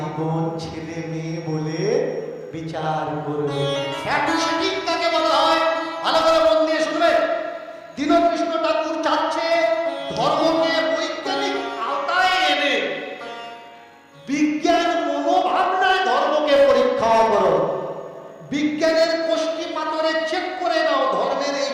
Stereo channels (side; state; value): both; identical; correlation 1.00